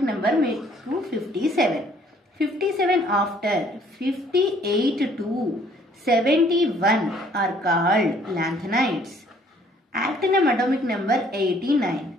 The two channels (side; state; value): both; normal; correlation 0.60